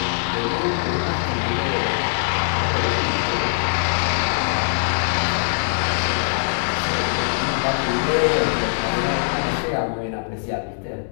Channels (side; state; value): right; silent; digital silence